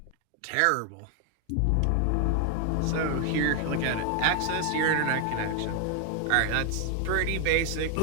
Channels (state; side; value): different; both; correlation 0.00